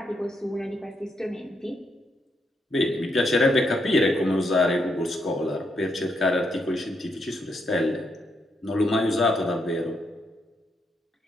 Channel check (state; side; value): normal; both; correlation 0.78